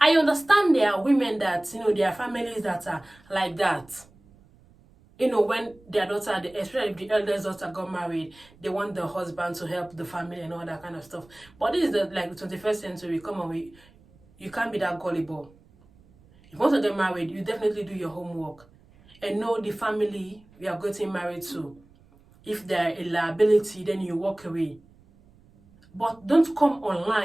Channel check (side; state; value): right; noise; rumble, 28 dB below the sound